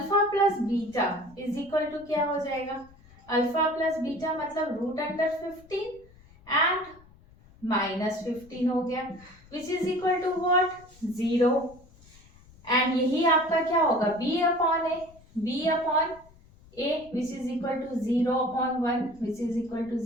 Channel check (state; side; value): noise; left; rumble, 25 dB below the sound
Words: plus beta is equal to क्या हो जाएगा, अल्फा प्लस बीटा मतलब रूट अंडर 15 एंड -15 हो गया, which is equal to what 0। And यही आपका क्या होगा b upon a which is equal to 0 upon 1 which is equal to